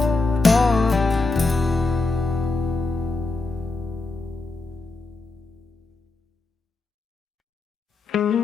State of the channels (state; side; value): quieter; right; 3.4 dB